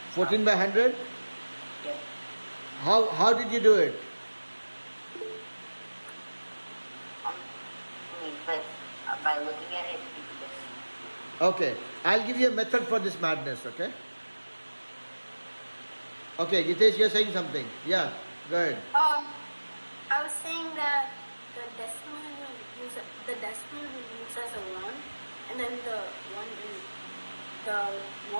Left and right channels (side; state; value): both; inverted; correlation -1.00